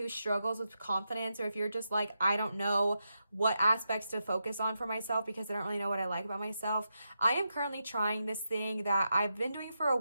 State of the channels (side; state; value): both; inverted; correlation -0.86